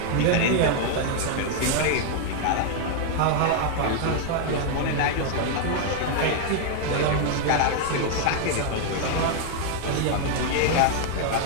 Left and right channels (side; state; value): both; different; correlation 0.00